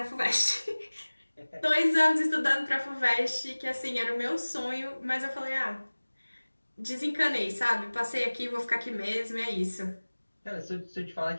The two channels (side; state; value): both; inverted; correlation -1.00